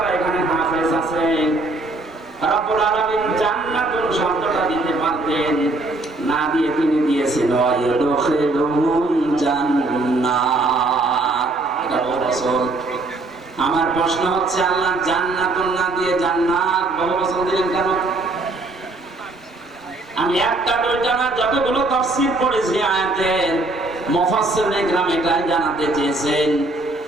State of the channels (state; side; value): quieter; left; 3.0 dB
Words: এখানে হাফেজ আছেন, রব্বুল আলামিন জান্নাতুল শব্দটা দিতে পারতেন, না দিয়ে তিনি দিয়েছেন ওয়াইদখিলুহুম জান্নাত। এটা বহু বছর। আমার প্রশ্ন হচ্ছে, আল্লাহ জান্নাতুল না দিয়ে জান্নাত বহু বছর দিলেন কেন? আমি একটা দুইটা না, যতগুলো তাফসীর পড়েছি আয়াতের, মুফাসসিরুল ইকরাম এটাই জানাতে চেয়েছেন।